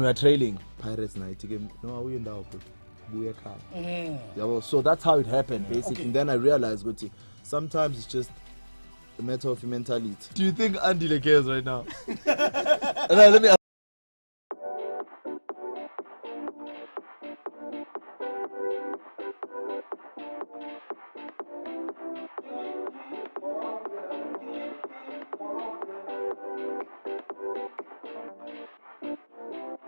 we are trailing Pirates night game, no awuye ndawo bro, buye ekhaya. Yabo, so that's how it happened basically. And then I realized ukuthi sometimes it's just a matter of mentality. Do you think Andile cares right now? Let me ask.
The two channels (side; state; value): both; inverted; correlation -1.00